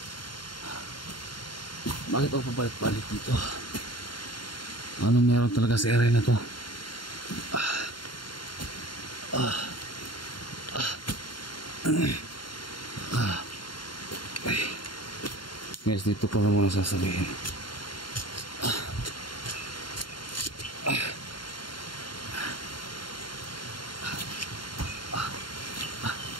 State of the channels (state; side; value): late; right; 0.72 ms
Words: Bakit ako pabalik-balik dito? Anong meron talaga sa area na to? Guys, dito ko na muna sasabihin.